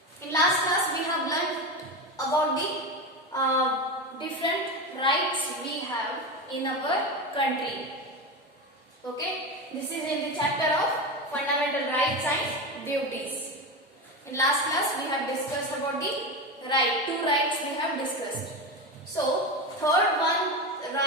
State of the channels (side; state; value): both; normal; correlation 0.19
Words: In last class we have learned about the different rights we have in our country. Okay, this is in the chapter of fundamental rights and duties. In last class we have discussed about the two rights we have discussed. So third one